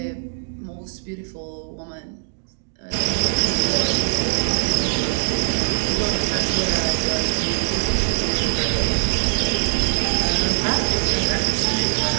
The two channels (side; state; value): left; silent; digital silence